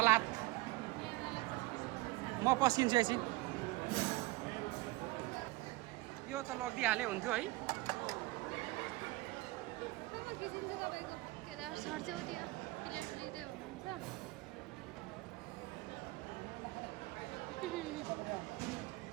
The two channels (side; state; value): left; quieter; 20.7 dB